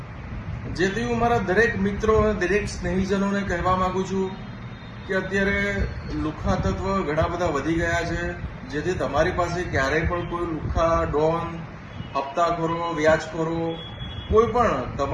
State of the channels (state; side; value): identical; both; correlation 1.00